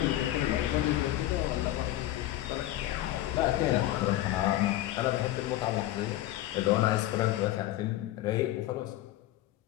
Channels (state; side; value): quieter; right; 14.7 dB